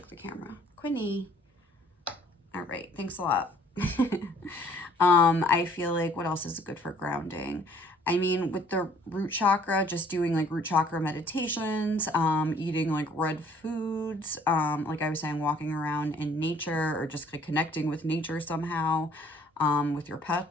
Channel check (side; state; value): both; normal; correlation 0.57